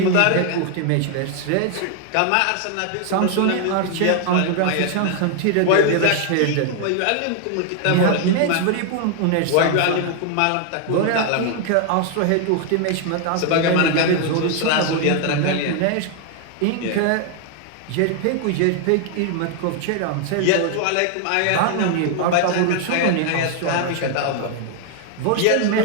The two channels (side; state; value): both; different; correlation 0.00